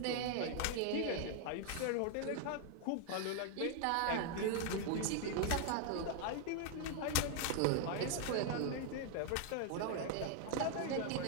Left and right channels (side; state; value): both; different; correlation 0.00